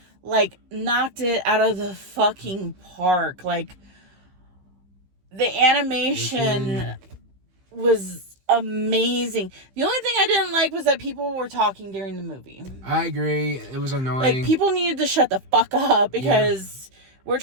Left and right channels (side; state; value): left; late; 15 ms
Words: like, knocked it out of the fucking park. Like, the animation was amazing. The only thing I didn't like was that people were talking during the movie. I agree. It was annoying. Like, people needed to shut the fuck up because we're